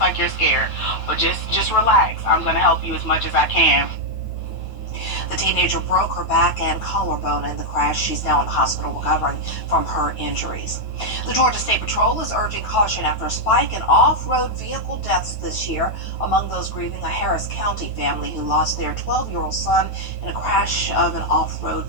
you're scared. But just relax. I'm going to help you as much as I can. The teenager broke her back and collarbone in the crash. She's now in the hospital recovering from her injuries. The Georgia State Patrol is urging caution after a spike in off-road vehicle deaths this year. Among those grieving, a Harris County family who lost their 12-year-old son in a crash of an off-road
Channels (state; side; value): late; right; 9.1 ms